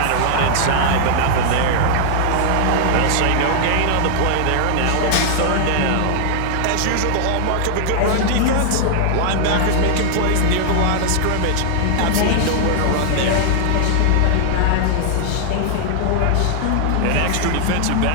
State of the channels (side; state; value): both; different; correlation -0.01